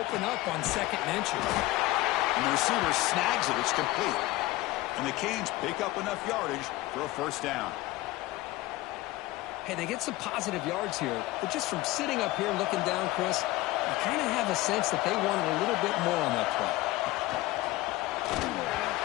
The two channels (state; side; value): quieter; right; 18.5 dB